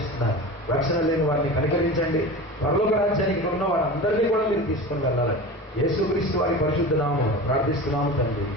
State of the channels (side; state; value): both; normal; correlation 0.31